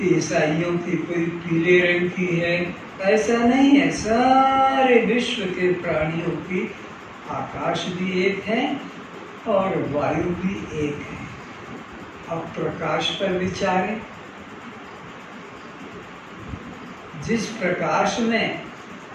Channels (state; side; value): identical; both; correlation 1.00